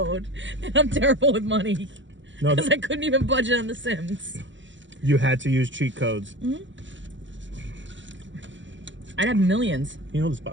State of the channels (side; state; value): left; late; 0.54 ms